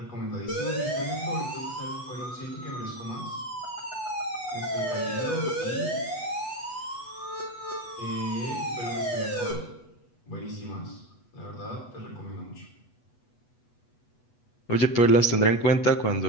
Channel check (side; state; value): right; late; 8.1 ms